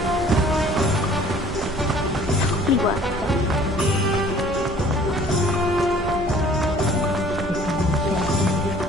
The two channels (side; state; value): both; normal; correlation 0.53